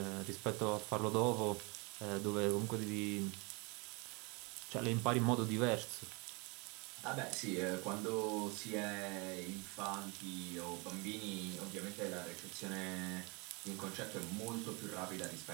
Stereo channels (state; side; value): quieter; left; 29.1 dB